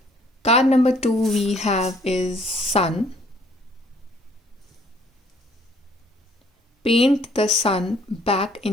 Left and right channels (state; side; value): normal; both; correlation 0.61